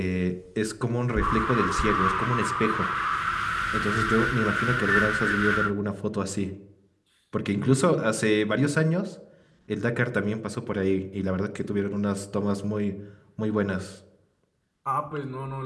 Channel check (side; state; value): both; identical; correlation 1.00